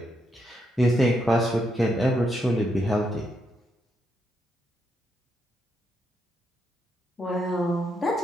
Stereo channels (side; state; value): both; normal; correlation 0.79